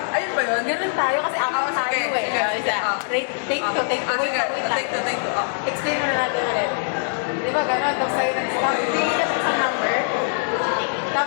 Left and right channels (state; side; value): silent; right; digital silence